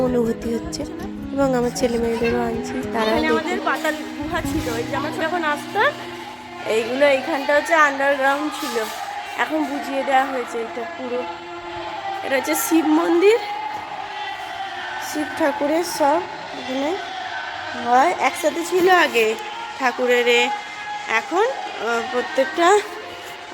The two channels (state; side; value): identical; both; correlation 1.00